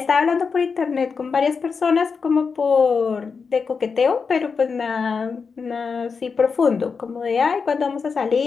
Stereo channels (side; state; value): right; quieter; 5.3 dB